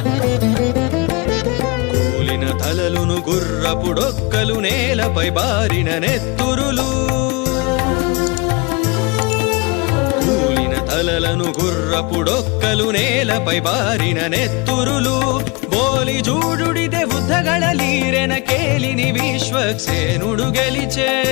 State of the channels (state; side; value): quieter; right; 27.9 dB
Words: కూలిన తలలును గుర్రపుడొక్కలు నేలపై బారిన నెత్తురులు కూలిన తలలను గుర్రపుడొక్కలు నేలపై బారిన నెత్తురులు బోలి జూడుడిದೆ బుద్ధಗಳೀರೆನ ಕೇಲಿನಿ ವಿಶ್ವಕ್ಸೇನುಡು ಗೆಲಿಚೆ